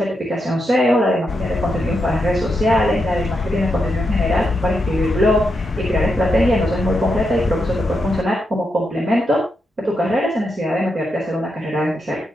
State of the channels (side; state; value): both; normal; correlation 0.84